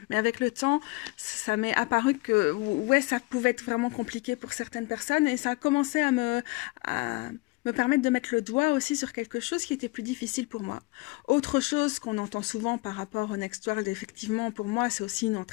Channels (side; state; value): right; quieter; 24.6 dB